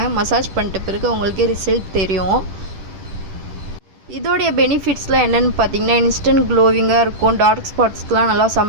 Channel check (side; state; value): left; late; 10 ms